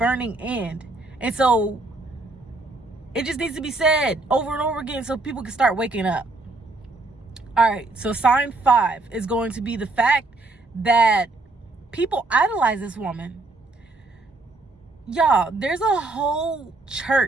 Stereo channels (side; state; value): left; quieter; 3.2 dB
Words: end. And so it just needs to be said over and over again so people can start waking up. All right, so sign 5 is going to be the fact that people idolize this woman. Y'all, there's a whole